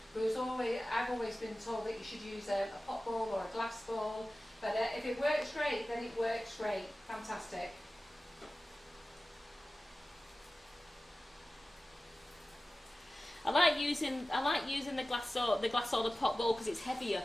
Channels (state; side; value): normal; both; correlation 0.96